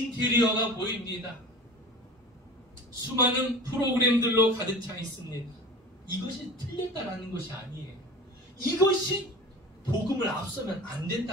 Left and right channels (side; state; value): both; normal; correlation 0.36